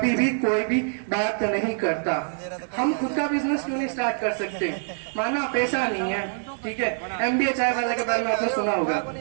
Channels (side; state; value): left; silent; digital silence